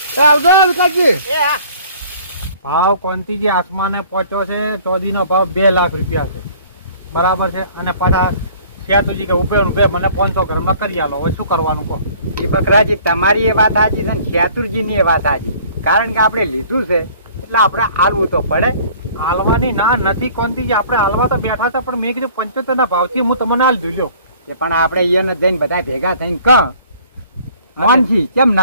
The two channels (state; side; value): inverted; both; correlation -0.53